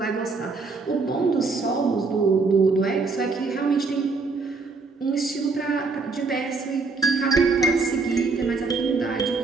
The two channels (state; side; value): quieter; left; 4.2 dB